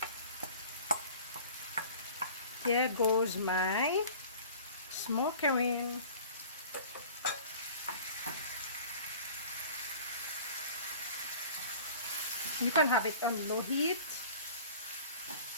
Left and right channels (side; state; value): both; inverted; correlation -0.44